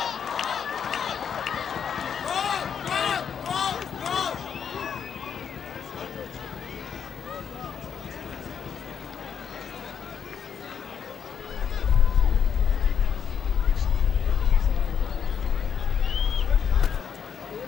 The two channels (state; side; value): quieter; right; 8.0 dB